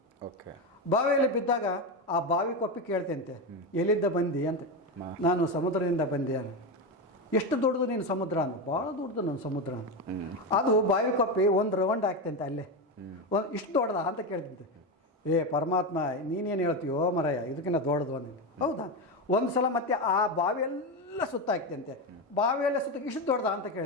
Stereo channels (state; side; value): normal; both; correlation 0.14